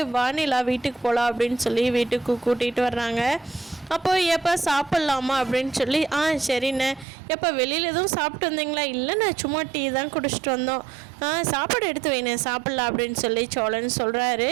வானிலா வீட்டுக்கு போகலாம் அப்படின்னு சொல்லி வீட்டுக்கு கூட்டிகிட்டு வர்றாங்க. அப்போது எப்போ சாப்பிட்லாமா அப்படின்னு சொல்லி சரிண்ணே. எப்போ வெளியில் எதுவும் சாப்பிட்டு வந்தீங்களா? இல்லைண்ணே, சும்மா டீ தான் குடிச்சிட்டு வந்தோம். சாப்பாடு எடுத்து வைண்ணே, சாப்பிட்லாம் அப்படின்னு சொல்லி சோழன் சொல்கிறாரு.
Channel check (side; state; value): left; drops out; at 7.1 s